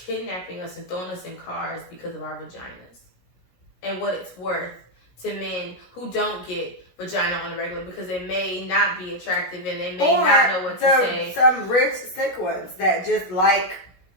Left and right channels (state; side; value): late; right; 17 ms